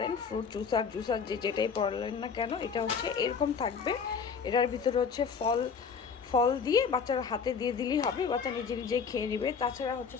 ফ্রুট জুসার যেটাই পড়লেন না কেন, এটা হচ্ছে এরকম থাকবে। এটার ভিতরে হচ্ছে ফল দিয়ে বাচ্চারা হাতে দিয়ে দিলেই হবে, বাচ্চা নিজে নিজেই খেয়ে নেবে। তাছাড়া হচ্ছে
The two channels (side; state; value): right; quieter; 6.0 dB